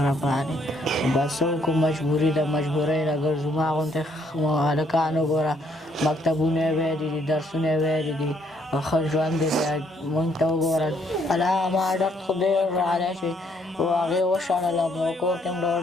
باندې بس څه وکړو مجبوري ده مجبورۍ نه ګرځو ما غوندې هلکان وګوره مکتبونه یې ویلي دي درسونه یې ویلي دي ښه ژوند دی موږ ته وګوره الله ما درد خو ډېر راغلی چې هغې وشړلم او کور کې هم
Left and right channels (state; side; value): normal; both; correlation 0.68